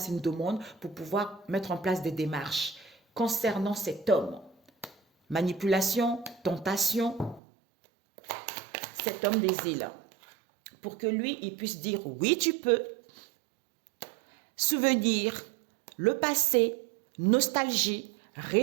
une demande, pour pouvoir mettre en place des démarches concernant cet homme. Manipulation, tentation, cet homme des îles. Pour que lui, il puisse dire oui, tu peux. Souvenir, le passé, nostalgie,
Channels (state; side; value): drops out; left; at 7.4 s